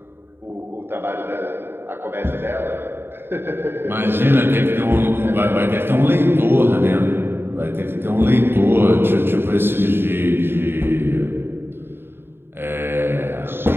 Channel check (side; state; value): left; late; 0.11 ms